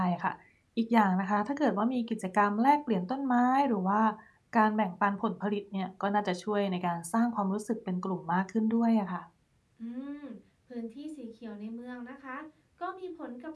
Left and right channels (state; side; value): identical; both; correlation 1.00